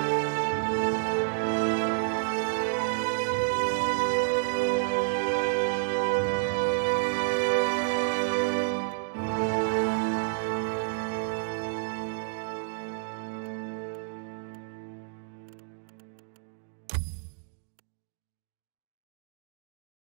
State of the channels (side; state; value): left; silent; digital silence